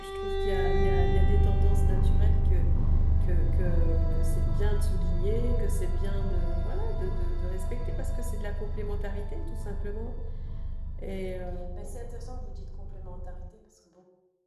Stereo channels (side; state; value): both; identical; correlation 1.00